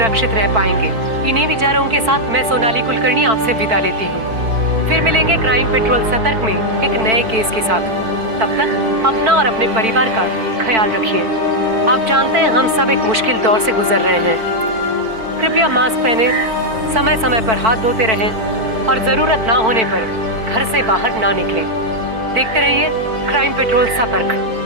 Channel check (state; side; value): late; left; 4.5 ms